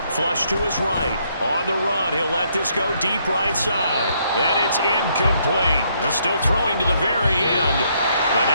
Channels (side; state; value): both; inverted; correlation -0.71